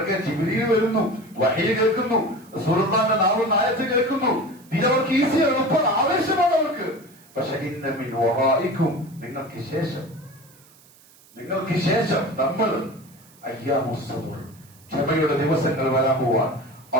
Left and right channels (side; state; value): right; noise; hiss, 27 dB below the sound